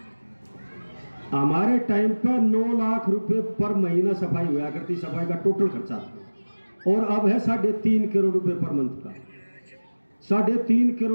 हमारे टाइम पर 9 लाख रुपए पर महीना सफाई हुआ करती, सफाई का टोटल खर्चा, और अब है 3.5 करोड़ रुपए पर मंथ का। 3.5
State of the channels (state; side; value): inverted; both; correlation -1.00